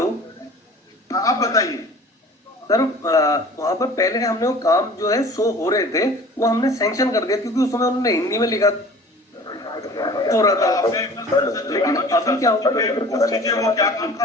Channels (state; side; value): normal; both; correlation 0.44